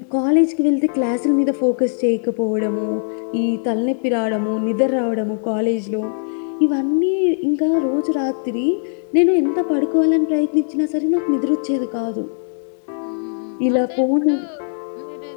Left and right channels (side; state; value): right; silent; 66 dB below the other